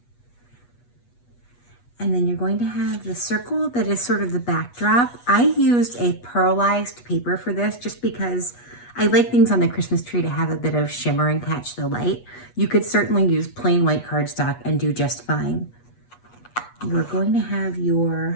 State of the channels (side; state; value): right; late; 8.3 ms